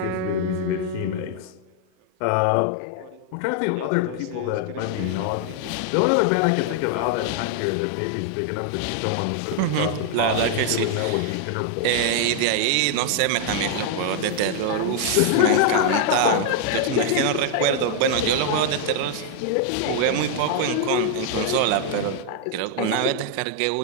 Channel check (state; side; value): different; both; correlation 0.00